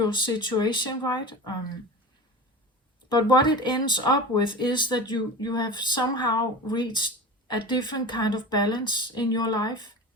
situation, right? But what it ends up with is that you have somehow reached a different kind of balance in your life.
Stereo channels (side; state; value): both; normal; correlation 0.31